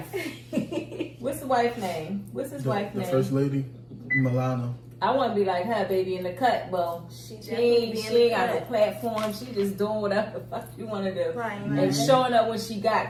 What's the wife's name? What's his wife's The name? first lady, Milana. I want to be like her, baby, in the cut. Well, she ain't got no platform. She just doing whatever the fuck you want to do. Right, And right. showing up when she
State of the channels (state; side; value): identical; both; correlation 1.00